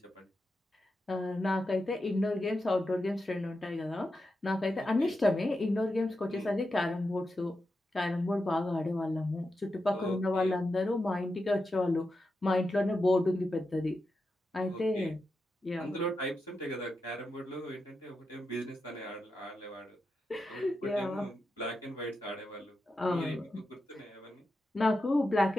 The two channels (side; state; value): both; normal; correlation 0.88